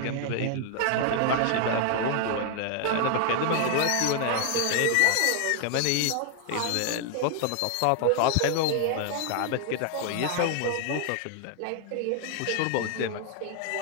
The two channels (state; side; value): different; both; correlation 0.00